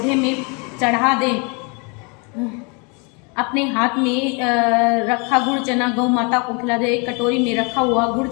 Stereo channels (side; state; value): right; quieter; 32.7 dB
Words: में चढ़ा दे। अपने हाथ में रखा गुड़ चना गौ माता को खिला दे। एक कटोरी में रखा हुआ गुड़